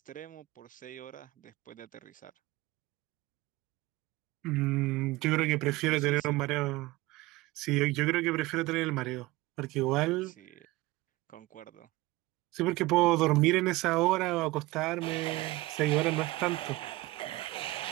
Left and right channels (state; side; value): quieter; left; 20.0 dB